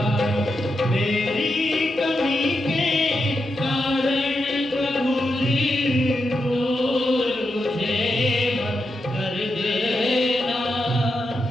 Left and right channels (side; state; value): both; normal; correlation 0.86